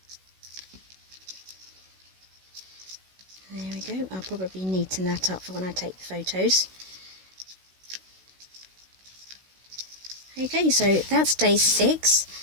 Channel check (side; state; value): left; late; 16 ms